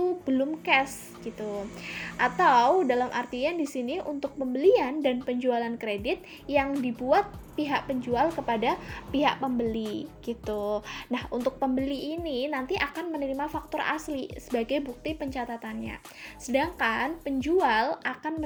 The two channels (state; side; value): identical; both; correlation 1.00